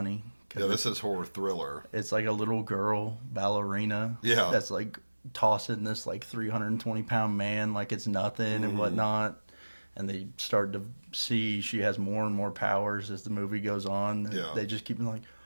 'Cause Yeah, this is horror thriller. it's like a little girl ballerina. Yeah. That's like tossing this like 320-pound man like it's nothing and whatnot. And they start to see she has more and more powers as the movie goes on. And Yeah. they just keep like,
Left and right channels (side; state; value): both; inverted; correlation -1.00